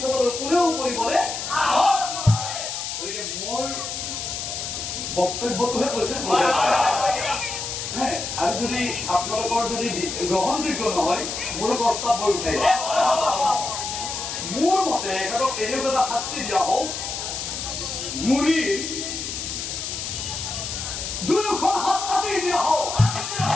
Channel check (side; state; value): left; noise; hiss, 5 dB below the sound